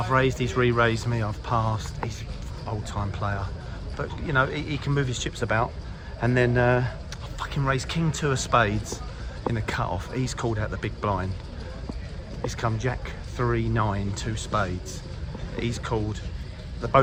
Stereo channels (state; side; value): identical; both; correlation 1.00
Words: raised, he's re-raised me, I've passed, he's an old-time player. But, you know, he can move his chips about. And then I fucking raised King 2 of spades in a cut-off. He's called out the big blind. He's come Jack 3, 9, 2 spades. He's called,